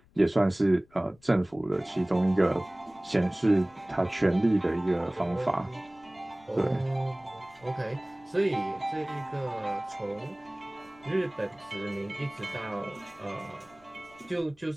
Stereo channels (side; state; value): left; noise; rumble, 29 dB below the sound